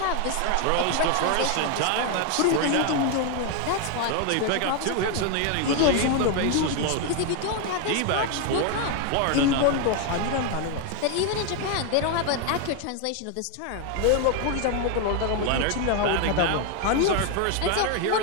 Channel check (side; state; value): both; different; correlation 0.01